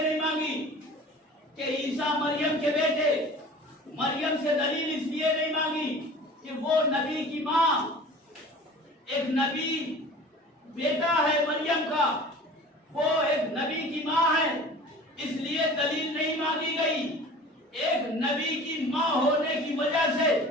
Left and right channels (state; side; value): normal; both; correlation 0.42